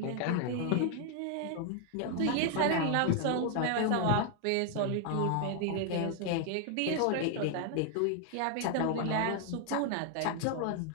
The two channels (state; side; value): different; both; correlation 0.00